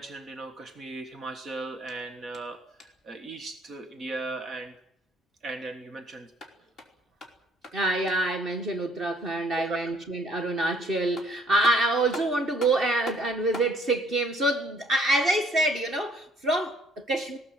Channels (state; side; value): normal; both; correlation 0.62